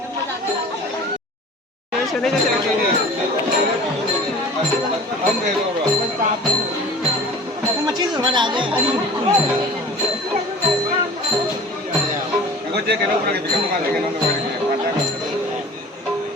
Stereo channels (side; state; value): both; normal; correlation 0.42